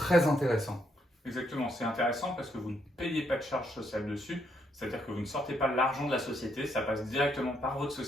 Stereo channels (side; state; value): both; normal; correlation 0.75